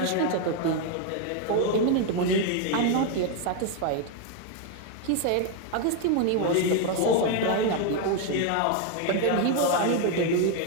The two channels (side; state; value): both; different; correlation 0.01